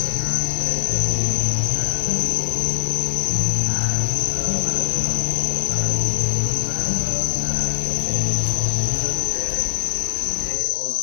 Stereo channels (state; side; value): silent; right; digital silence